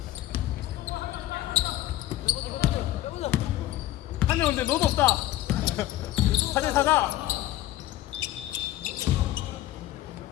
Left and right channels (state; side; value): quieter; right; 14.6 dB